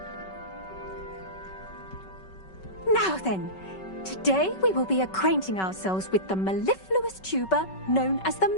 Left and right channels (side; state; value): right; late; 5.3 ms